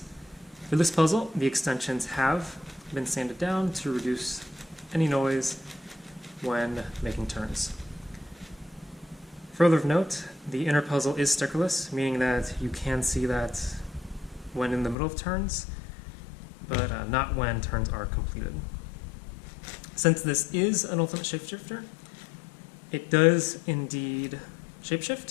For this puzzle, the extensions have been sanded down to reduce any noise when making turns. Further of note, the inner puzzle is stickerless, meaning that you can see that when in the middle of turns, but not when turns are completed. Since this is an Ultimate Shapeshifter, it does indeed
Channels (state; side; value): drops out; right; at 15.0 s